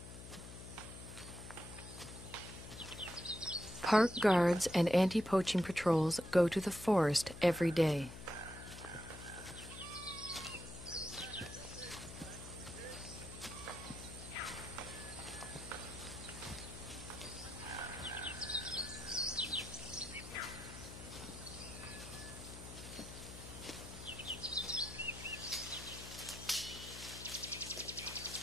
Park guards and anti-poaching patrols go to the forest every day.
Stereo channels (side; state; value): left; noise; hum, 12 dB below the sound